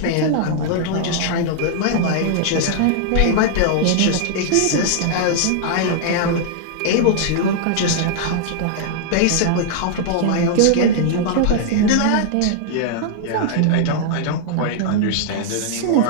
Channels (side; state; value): both; different; correlation -0.01